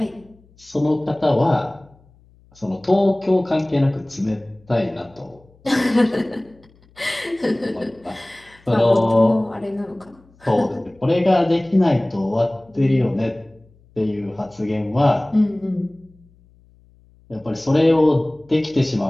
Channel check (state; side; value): noise; left; hum, 30 dB below the sound